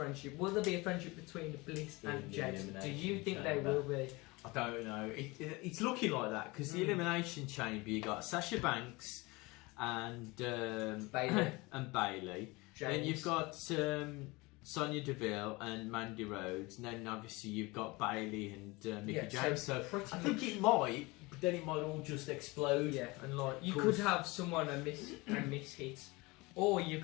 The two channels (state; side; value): quieter; right; 23.9 dB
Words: Will there be a friendship between Bliss and James? Do you think they will be? I don't know. It's looking like that because the Elimination Chamber, you got Sasha Banks and Bailey. and Bailey. Then you've got Sonya Deville and Mandy Rhodes, and then obviously you've got Bailey and Mickie James. So I think it might, but then it might all just explode. Yeah, and like you could have someone a miss hit, or you